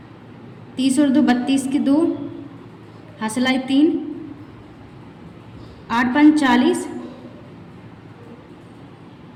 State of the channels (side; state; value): both; identical; correlation 1.00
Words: 30 और 2 32 की 2, हासिलाई 3, 8 5 40,